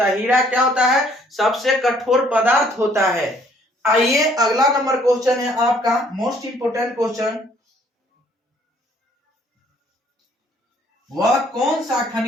है। हीरा क्या होता है, सबसे कठोर पदार्थ होता है। आइए अगला नंबर क्वेश्चन है आपका, मोस्ट इंपोर्टेंट क्वेश्चन। वह कौन सा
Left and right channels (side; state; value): both; normal; correlation 0.62